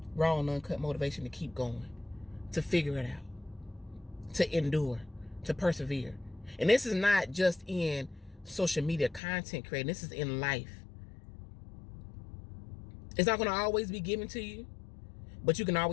Raw and uncut motivation to keep going, to figure it out, to endure, to persevere. And this is not just in social media content creating. This is in life. It's not going to always be given to you, but you can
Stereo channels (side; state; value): right; drops out; at 9.2 s